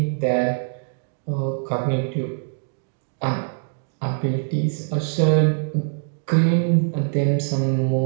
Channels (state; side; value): silent; left; 63 dB below the other